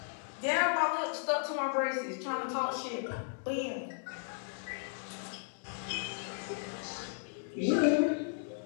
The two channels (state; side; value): silent; right; digital silence